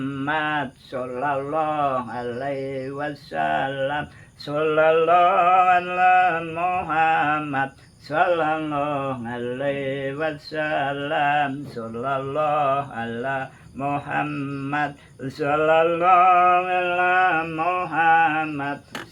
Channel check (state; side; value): identical; both; correlation 1.00